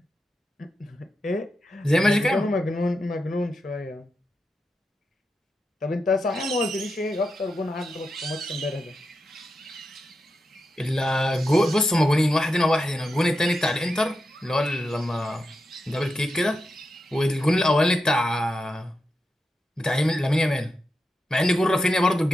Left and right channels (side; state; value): both; normal; correlation 0.87